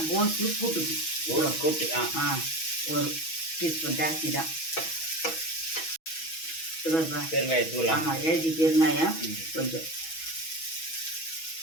கோஸு கூட்டுக்கு கூட்டு. ஒரு டீஸ்பூன் ஜாஸ்தி தான். பெருங்காய தூள். ஆமாம், எழுதி பெருங்காயம் கொஞ்சம்.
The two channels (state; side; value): late; right; 6.2 ms